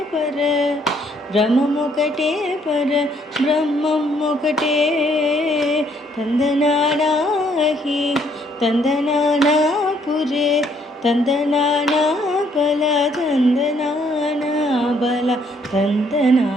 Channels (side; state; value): both; normal; correlation 0.67